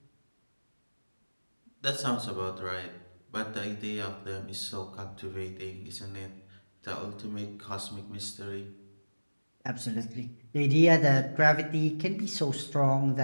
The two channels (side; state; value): both; inverted; correlation -1.00